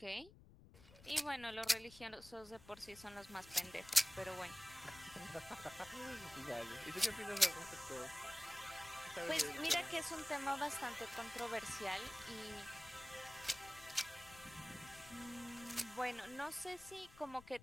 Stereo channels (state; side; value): noise; left; rumble, 20 dB below the sound